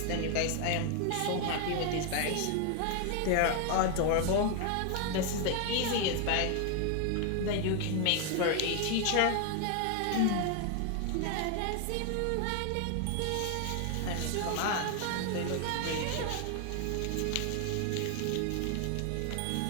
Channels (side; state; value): both; different; correlation 0.00